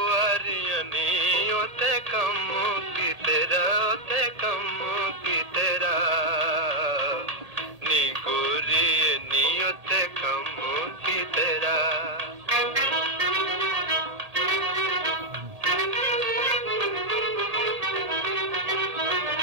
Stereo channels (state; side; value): late; left; 1.8 ms